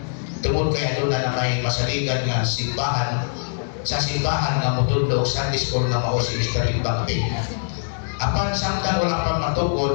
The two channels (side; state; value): right; silent; 64 dB below the other